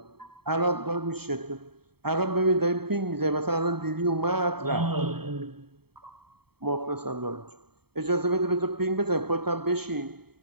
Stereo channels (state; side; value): late; left; 0.96 ms